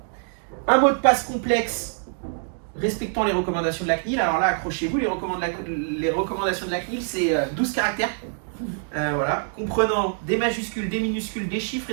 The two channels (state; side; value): silent; left; digital silence